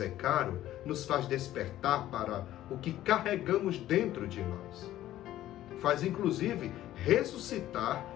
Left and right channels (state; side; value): quieter; right; 13.7 dB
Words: caro, nos faz despertar para o que carregamos dentro de nós. Faz, inclusive, ressuscitar